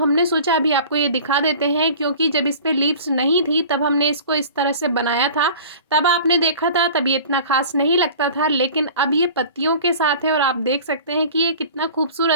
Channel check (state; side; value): inverted; both; correlation -0.42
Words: सोचा अभी आपको ये दिखा देते हैं, क्योंकि जब इस पर लीव्स नहीं थी तब हमने इसको इस तरह से बनाया था। तब आपने देखा था, तब ये इतना खास नहीं लगता था, लेकिन अब ये पत्तियों के साथ है और आप देख सकते हैं कि ये कितना